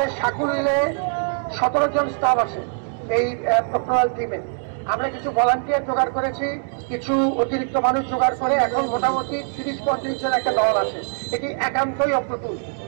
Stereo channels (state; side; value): silent; left; 64 dB below the other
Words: সাকুলে 17 জন স্টাফ আছে এই প্রক্টোরাল টিমে, আমরা কিছু ভলান্টিয়ার জোগাড় করেছি, কিছু অতিরিক্ত মানুষ জোগাড় করে এখন মোটামুটি 30-35 জন একটা দল আছে। এটি একান্তই অপ্রতুল।